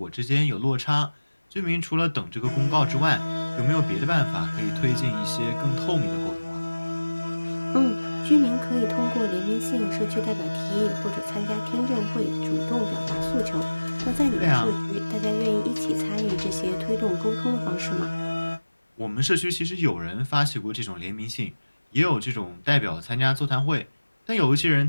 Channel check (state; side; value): inverted; both; correlation -1.00